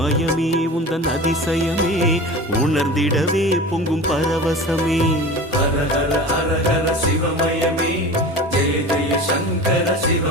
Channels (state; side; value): normal; both; correlation 0.34